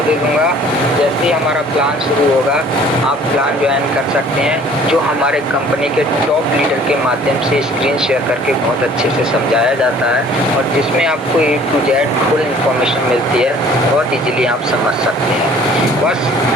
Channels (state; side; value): normal; both; correlation 0.52